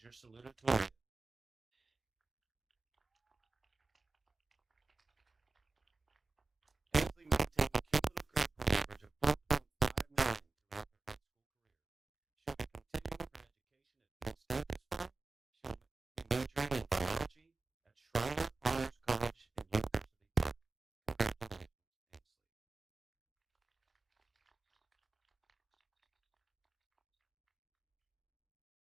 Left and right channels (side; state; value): left; quieter; 3.6 dB